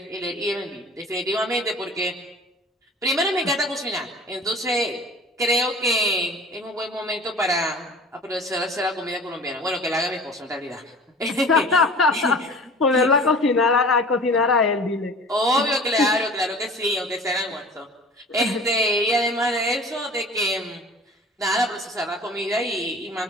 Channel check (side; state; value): both; normal; correlation 0.43